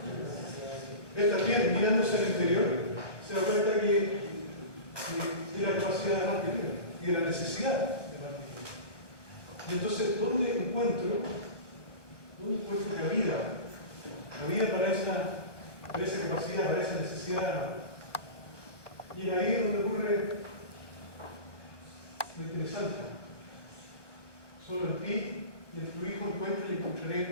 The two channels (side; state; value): right; late; 1.1 ms